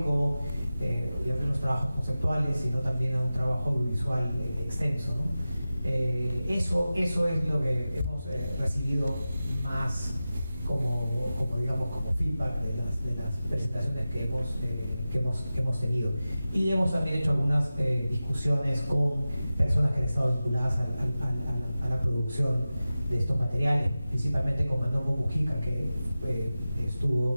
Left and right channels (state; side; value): inverted; both; correlation -0.95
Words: y a los trabajos conceptuales, sino también a un trabajo audiovisual extenso, ¿no? Eso es lo que hemos recibido más digamos, como feedback de las presentaciones que hemos tenido. Y hemos también hecho algunas discusiones con personas que han estado vinculadas a la producción de estos materiales, principalmente con Manongo Mujica, que